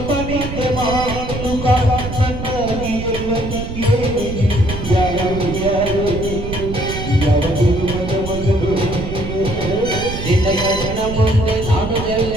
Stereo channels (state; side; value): noise; right; rumble, 7 dB below the sound